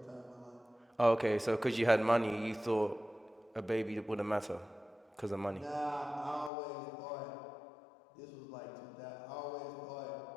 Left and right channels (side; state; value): right; drops out; at 6.5 s